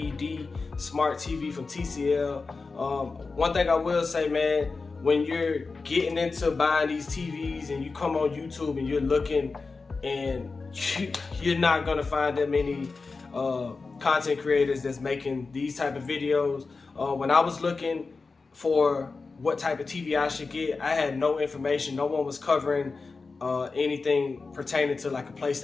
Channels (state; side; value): quieter; right; 4.2 dB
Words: Smart TV from TCL. One thing I will say, man, when you're getting into buying these TVs and you come on YouTube and you're looking, and you're not gonna find that many content creators that's making these type of videos. When I was looking for what type of TV I should get, I had no information. No one was covering anything pertaining to like a